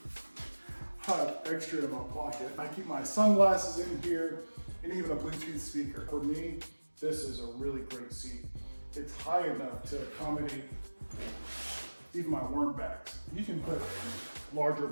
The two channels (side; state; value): both; inverted; correlation -1.00